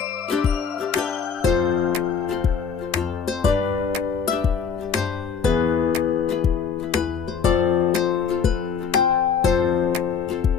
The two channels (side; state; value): right; quieter; 6.5 dB